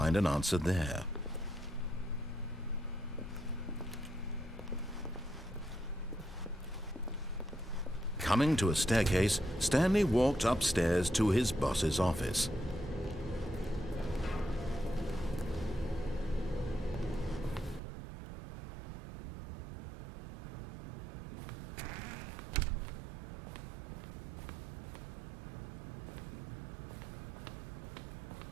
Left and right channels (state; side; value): drops out; left; at 17.8 s